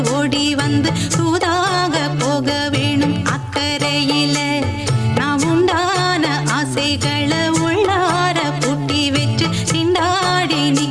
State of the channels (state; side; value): identical; both; correlation 1.00